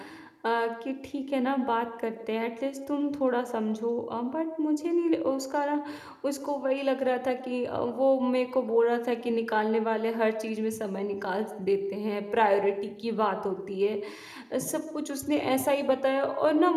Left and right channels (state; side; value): identical; both; correlation 1.00